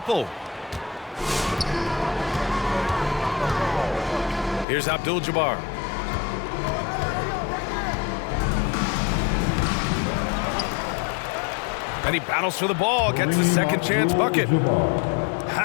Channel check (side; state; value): right; drops out; at 4.7 s